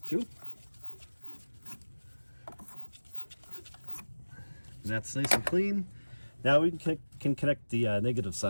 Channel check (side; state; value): both; inverted; correlation -1.00